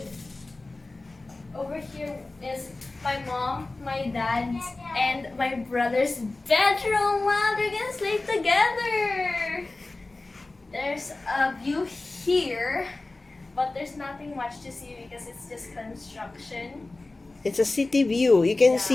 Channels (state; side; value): quieter; right; 3.1 dB